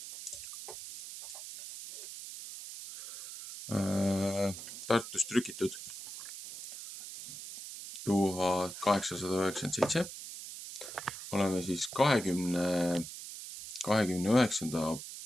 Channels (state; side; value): noise; right; hiss, 10 dB below the sound